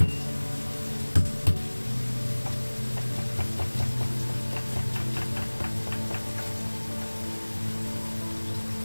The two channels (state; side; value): inverted; both; correlation -1.00